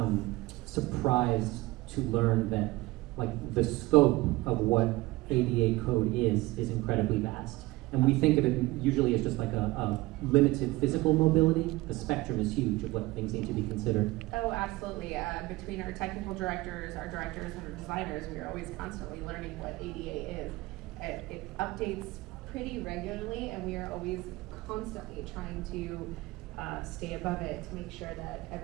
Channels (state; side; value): quieter; left; 20.1 dB